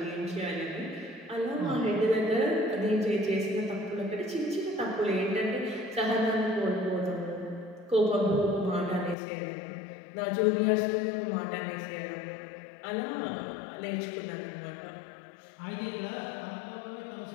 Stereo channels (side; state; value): right; drops out; at 9.2 s